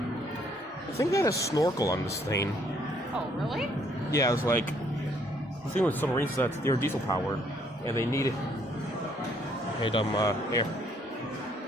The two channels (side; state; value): both; normal; correlation 0.66